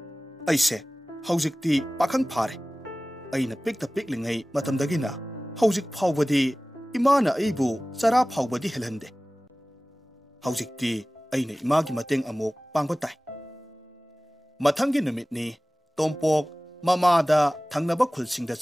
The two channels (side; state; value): both; normal; correlation 0.98